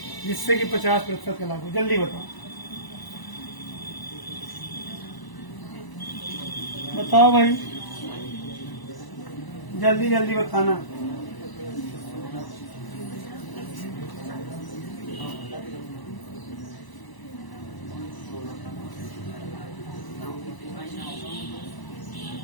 जिससे कि 50% का लाभ हो, जल्दी बताओ। बताओ भाई, जल्दी जल्दी बताना।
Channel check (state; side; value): late; right; 1.0 ms